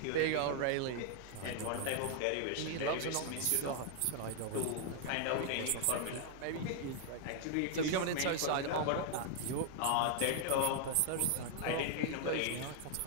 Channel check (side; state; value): both; different; correlation 0.00